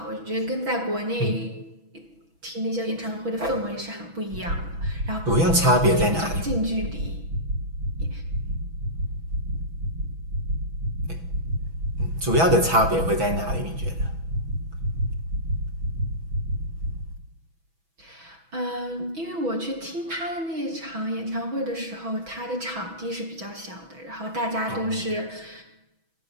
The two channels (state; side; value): late; left; 6.1 ms